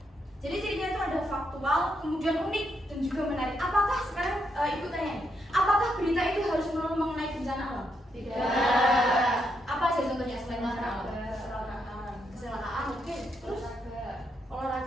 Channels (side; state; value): both; normal; correlation 0.79